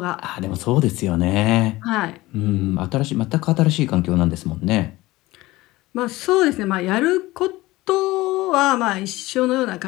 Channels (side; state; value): right; quieter; 19.0 dB